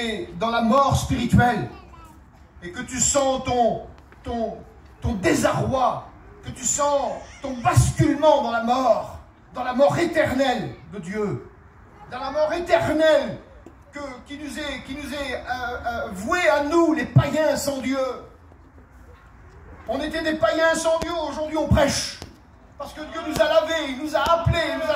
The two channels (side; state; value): both; identical; correlation 1.00